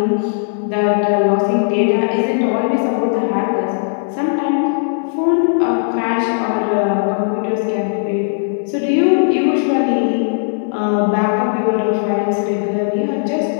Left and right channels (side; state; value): right; silent; 68 dB below the other